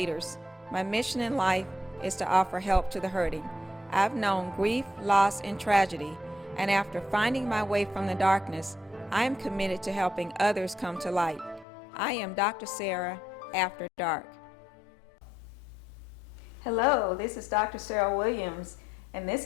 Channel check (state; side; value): drops out; right; at 11.7 s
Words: My mission in life is to offer help to the hurting. I've known grief, loss, and tragedy, and after finding my way from the darkness, I am committed to helping others come to light. I am Dr. Sarah After Dark. Hello, this is Dr. Sarah Williams, and